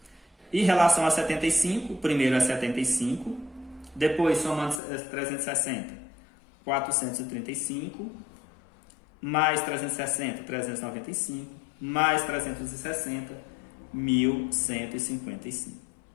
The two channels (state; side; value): drops out; right; at 4.8 s